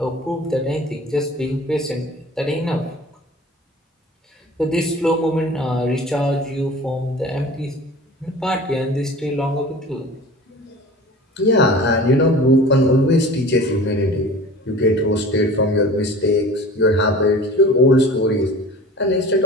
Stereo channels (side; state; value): both; normal; correlation 0.40